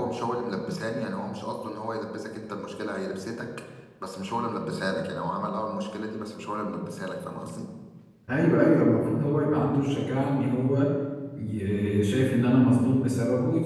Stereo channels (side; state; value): both; identical; correlation 1.00